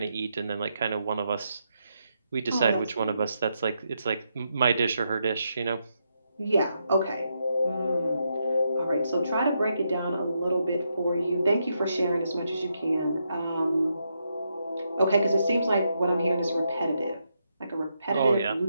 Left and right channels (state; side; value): inverted; both; correlation -0.82